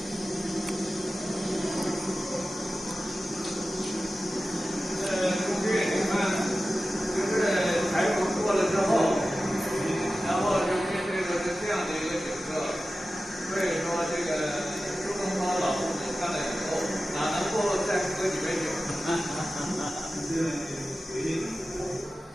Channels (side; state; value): both; normal; correlation 0.94